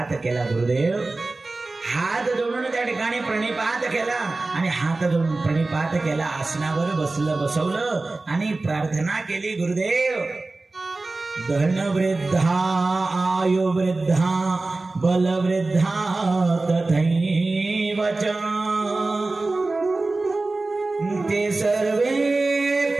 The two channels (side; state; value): left; quieter; 3.3 dB